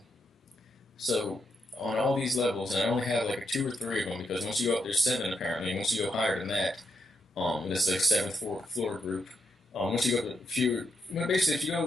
So on all these levels, and I only have like 2 or 3 of them because once you go up, there's 7 apparently. And once you go higher than that, this is like 7th floor group. Once you go to a few, basically if you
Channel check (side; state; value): both; normal; correlation 0.81